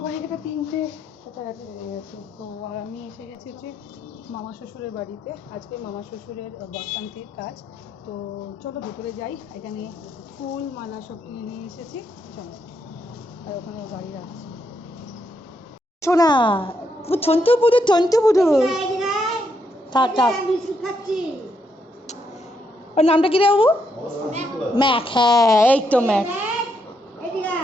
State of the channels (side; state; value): both; normal; correlation 0.78